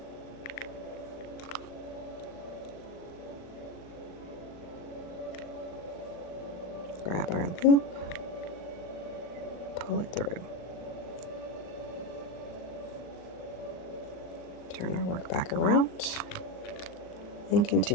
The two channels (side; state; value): right; late; 39 ms